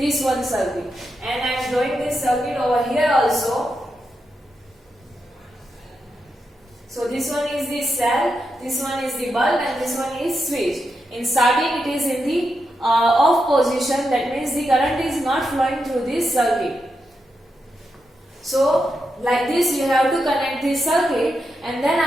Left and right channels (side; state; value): both; normal; correlation 0.86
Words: one circuit, and I am drawing this circuit over here also. So this one is the cell, this one is the bulb and this one is switch. In starting it is in the off position, that means the current is not flowing through this circuit. So like this you have to connect this circuit, and then